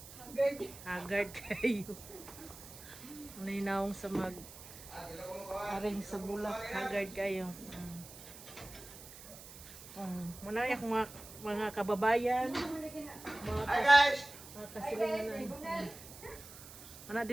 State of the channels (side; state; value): right; noise; hiss, 16 dB below the sound